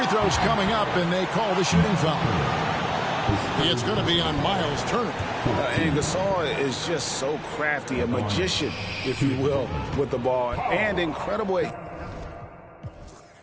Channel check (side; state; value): both; identical; correlation 1.00